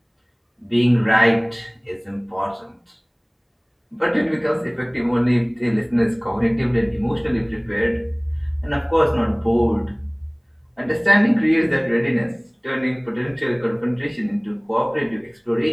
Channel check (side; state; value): both; identical; correlation 1.00